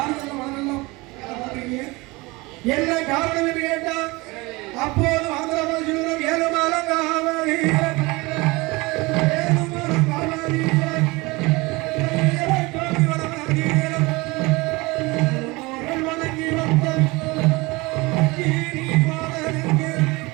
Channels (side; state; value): left; quieter; 23.6 dB